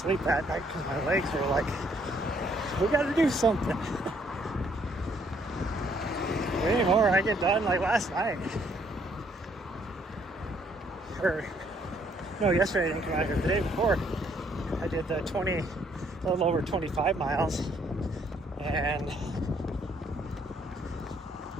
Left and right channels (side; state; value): both; normal; correlation 0.67